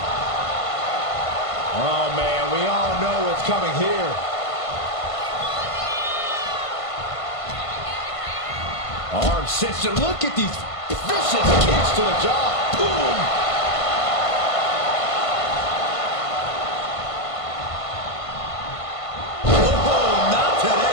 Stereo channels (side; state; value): right; late; 1.5 ms